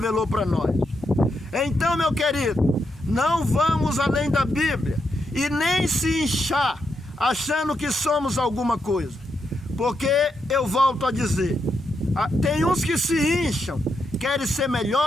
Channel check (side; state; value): both; normal; correlation 0.82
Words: para nós. Então, meu querido, não vamos além da Bíblia e nem se inchar achando que somos alguma coisa. Porque eu volto a dizer, tem uns que se incham, querem ser